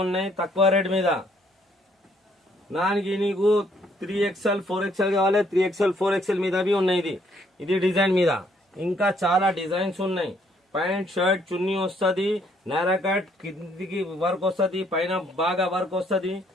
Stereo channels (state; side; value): normal; both; correlation 0.67